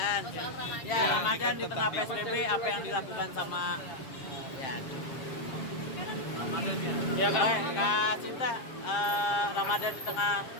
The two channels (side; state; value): right; late; 7.5 ms